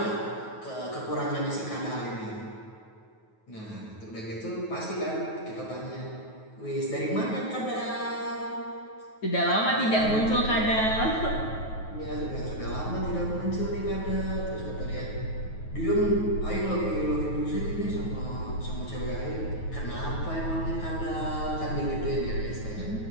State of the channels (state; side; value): late; right; 9.3 ms